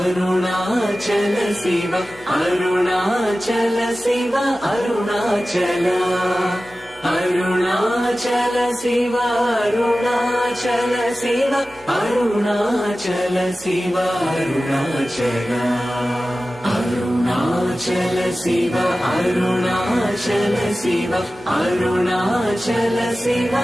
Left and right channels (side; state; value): left; noise; hum, 28 dB below the sound